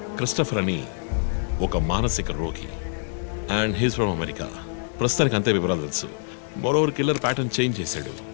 క్రిస్టఫర్ అని ఒక మానసిక రోగి అండ్ హీస్ ఫ్రమ్ అమెరికా. ప్రస్తుతానికి అంతే వివరాలు తెలుసు. మరోవర్ కిల్లర్ ప్యాటర్న్ చేంజ్ చేశాడు.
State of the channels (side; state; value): right; silent; digital silence